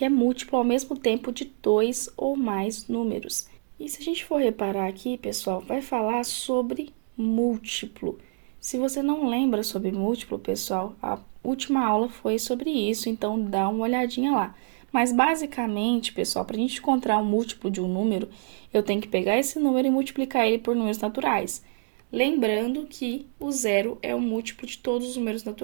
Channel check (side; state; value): left; silent; digital silence